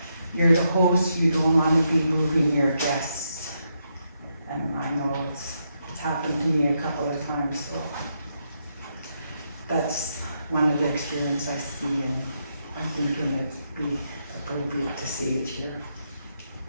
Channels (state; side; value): inverted; both; correlation -0.81